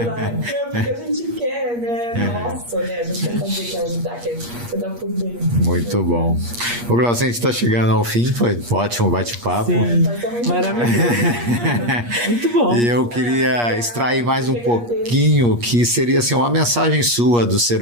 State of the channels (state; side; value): late; left; 8.5 ms